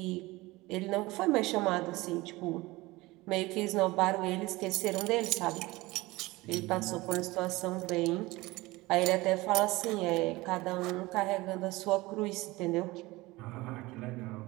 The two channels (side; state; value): left; quieter; 20.8 dB